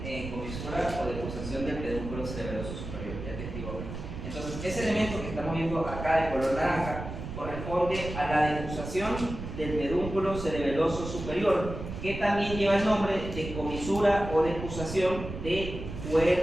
comisura o decusación del pedúnculo cerebeloso superior, ya te digo. Entonces, ese elemento que estamos viendo acá de color naranja corresponde a la decusación del pedúnculo cerebeloso superior, que también lleva el nombre de comisura o decusación de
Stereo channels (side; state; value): right; noise; rumble, 8 dB below the sound